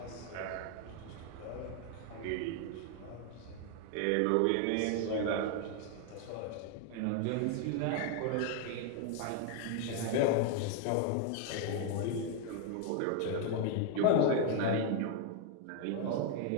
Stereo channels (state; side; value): different; both; correlation 0.01